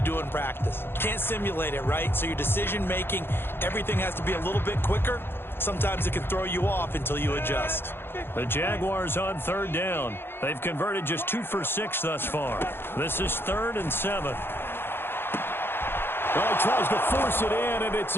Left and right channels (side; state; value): right; late; 0.11 ms